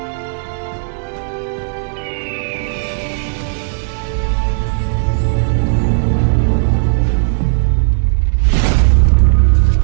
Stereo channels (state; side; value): silent; left; digital silence